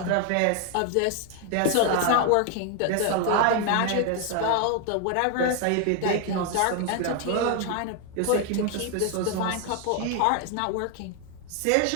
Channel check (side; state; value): both; different; correlation 0.01